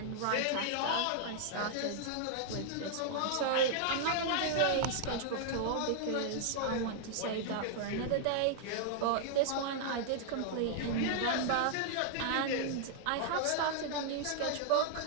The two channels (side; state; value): both; different; correlation -0.01